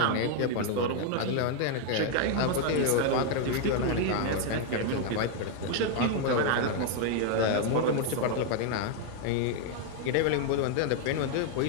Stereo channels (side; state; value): both; different; correlation 0.00